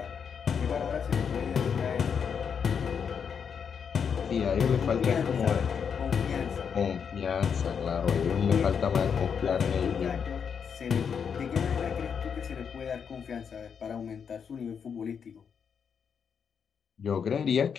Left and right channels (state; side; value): quieter; right; 6.9 dB